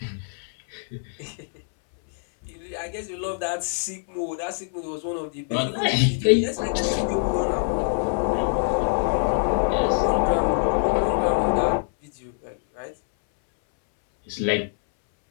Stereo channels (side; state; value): right; silent; 62 dB below the other